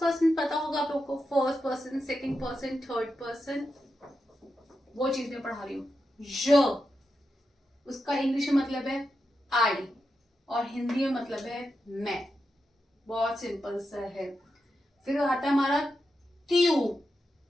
पर्सन। पता होगा आप लोग को, first person, second person, third person, वो चीज मैं पढ़ा रही हूँ। ज उसका इंग्लिश में मतलब है आई और हिंदी में मतलब है मैं। बहुत सिंपल सा है। फिर आता है हमारा त्यू।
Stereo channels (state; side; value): normal; both; correlation 0.88